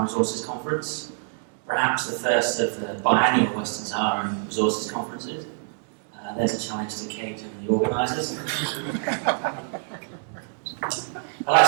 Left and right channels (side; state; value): left; silent; digital silence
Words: Resources Conference, perhaps the first of the biannual Western Sahara Resources Conferences. There's a challenge to Kate and the organisers. I'd like